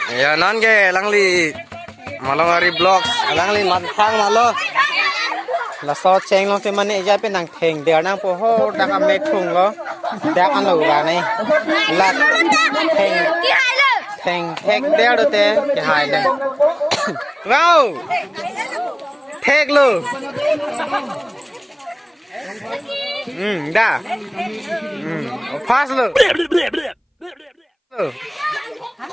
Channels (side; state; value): both; identical; correlation 1.00